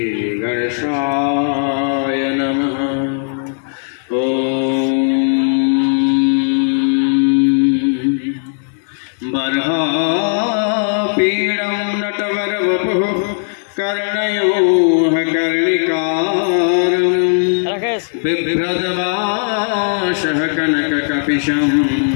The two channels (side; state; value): right; silent; digital silence